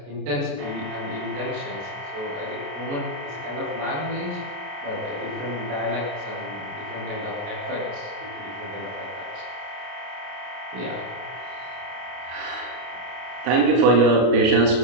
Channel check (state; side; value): late; left; 33 ms